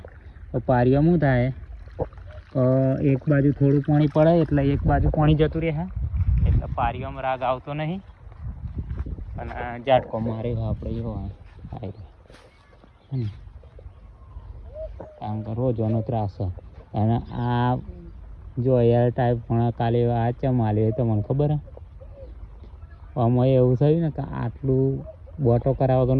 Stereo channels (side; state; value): both; identical; correlation 1.00